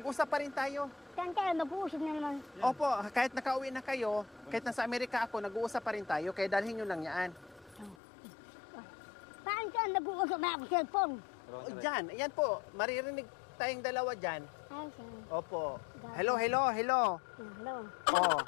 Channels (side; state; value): right; drops out; at 8.0 s